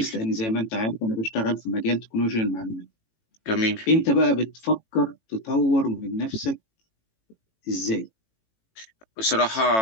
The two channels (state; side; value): late; right; 18 ms